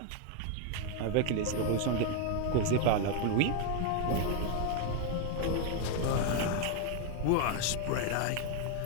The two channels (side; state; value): both; different; correlation 0.00